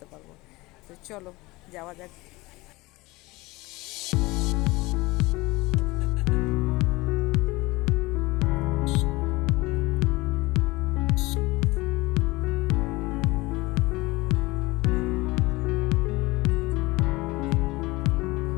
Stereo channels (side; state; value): right; quieter; 21.8 dB